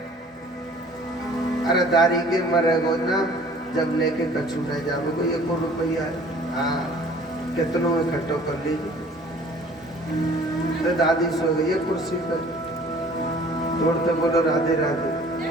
अरे दारी के मरे गो ना जब लेके कछु न जावे को 1 रुपया है। हाँ कितनों इकट्ठो कर लीजिए। तो दादी सो गई है कुर्सी पर, दौड़ते बोलो राधे राधे।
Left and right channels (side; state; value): both; normal; correlation 0.51